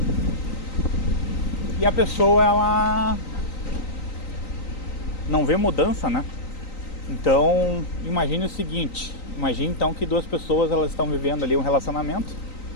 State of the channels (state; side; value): late; right; 3.9 ms